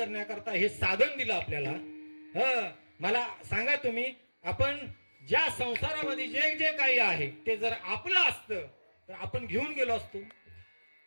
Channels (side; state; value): both; inverted; correlation -1.00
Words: हे साधन दिलं आपल्याला. मला सांगा तुम्ही, आपण ज्या संसारामध्ये जे जे काही आहे ते जर आपलं असतं तर आपण घेऊन गेलो असतो.